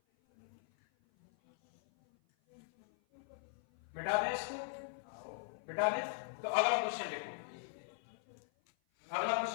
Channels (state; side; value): silent; right; 51 dB below the other